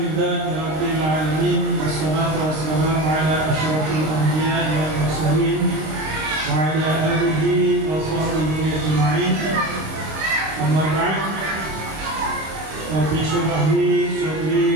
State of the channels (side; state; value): left; late; 26 ms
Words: alamin, wassalatu wassalamu ala asyrafil anbiya'i wal mursalin wa ala alihi wa sahbihi ajma'in. Amma ba'd. Rabbi shrah li